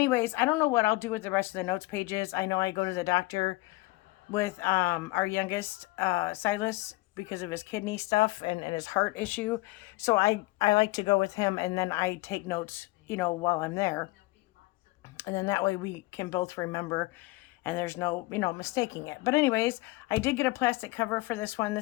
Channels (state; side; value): quieter; right; 21.9 dB